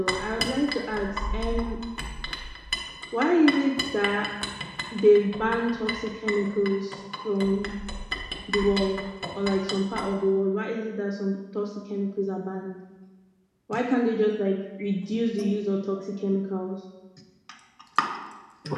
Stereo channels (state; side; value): identical; both; correlation 1.00